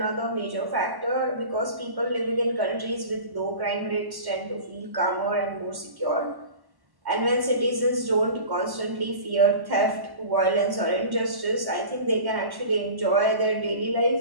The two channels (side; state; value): left; late; 1.1 ms